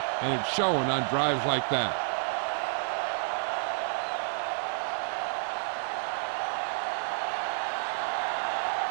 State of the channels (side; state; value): left; silent; 58 dB below the other